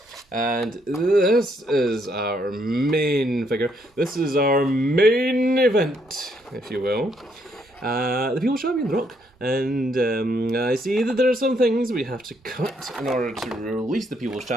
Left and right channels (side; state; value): both; normal; correlation 0.72